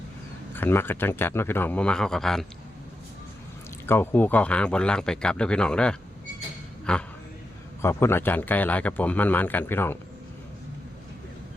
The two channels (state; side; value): normal; both; correlation 0.87